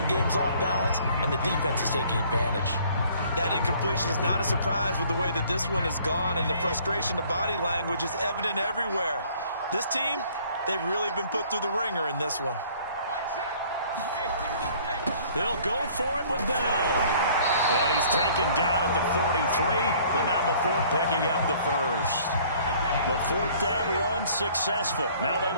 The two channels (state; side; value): inverted; both; correlation -0.56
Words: game's off balance, and the defense is taking advantage. That incompletion is not a surprise with the way that this one has gone, and the frustration, the body language is evident everywhere. This team, they've really been put through the ringer in this one. They'll go for it with Bell. And he's taken down at the 43, but not before picking up the first. The 4th down run successful. Now they